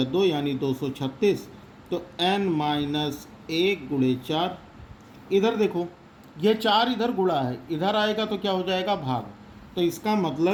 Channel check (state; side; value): identical; both; correlation 1.00